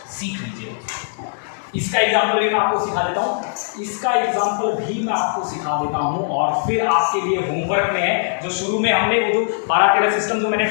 इसका एग्जाम्पल भी मैं आपको सिखा देता हूँ, और फिर आपके लिए होमवर्क में है जो शुरू में हमने वो जो 12-13 सिस्टम जो मैंने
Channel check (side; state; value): right; silent; digital silence